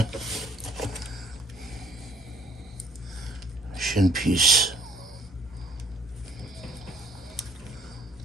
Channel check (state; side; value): normal; both; correlation 0.59